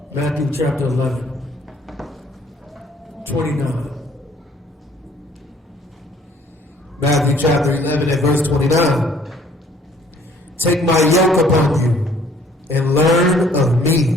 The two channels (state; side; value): normal; both; correlation 0.58